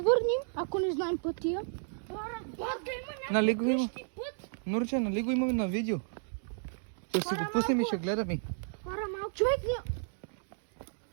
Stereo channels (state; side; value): silent; left; digital silence